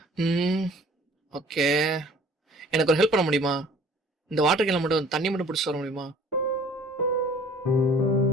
ம் ஓகே. எனக்கு ஒரு ஹெல்ப் பண்ண முடியுமா? இந்த வாட்டர் கேன்ல மட்டும் தண்ணி மட்டும் பிடிச்சிட்டு வர முடியுமா?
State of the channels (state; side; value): normal; both; correlation 0.51